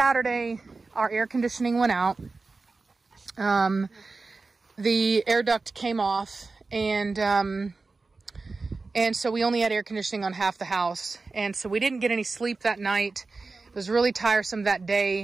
our air conditioning went out. The air duct came off, and so we only had air conditioning on half the house. And so we didn't get any sleep that night. It was really tiresome that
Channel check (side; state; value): left; quieter; 3.9 dB